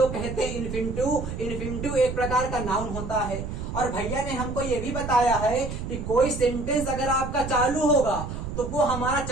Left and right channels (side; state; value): right; noise; rumble, 6 dB below the sound